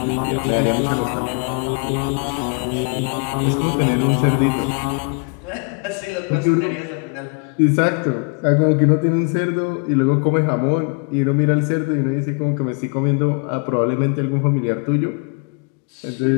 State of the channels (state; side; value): quieter; right; 36.9 dB